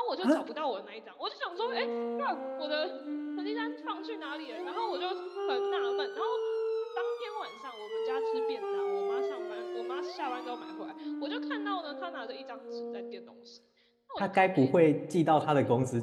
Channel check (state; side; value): identical; both; correlation 1.00